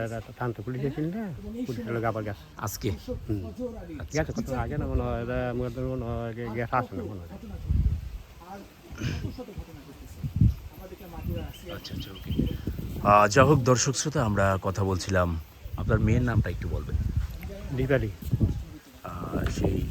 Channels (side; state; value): both; identical; correlation 1.00